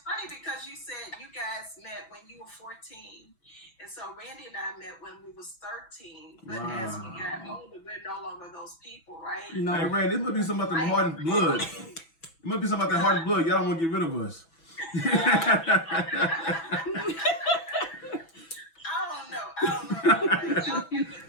funny because you said you guys met when you were 14. And so Randy and I met when we was 13. But as we got older, we're no longer those people, right? No. Hey, Randy, this must be something about the Harden blood. It must be something about that Harden blood. Y'all don't want to get rid of us. I don't know. Y'all came looking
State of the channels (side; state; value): right; late; 6.1 ms